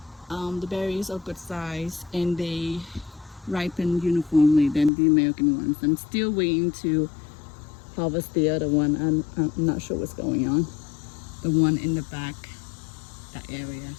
The berries are good size and they ripen uniformly than the American ones. I'm still waiting to harvest the other one. I'm not sure what's going on. The one in the back, that area,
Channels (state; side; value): drops out; right; at 4.9 s